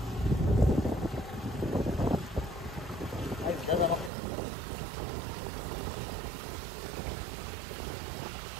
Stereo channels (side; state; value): left; drops out; at 4.1 s